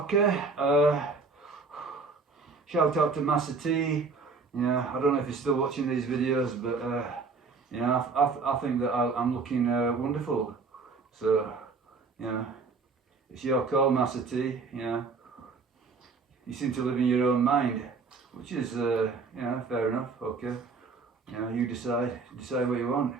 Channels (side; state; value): left; quieter; 4.5 dB